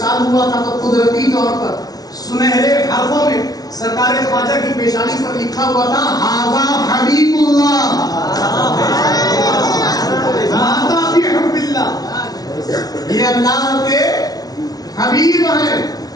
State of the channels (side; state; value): right; late; 0.19 ms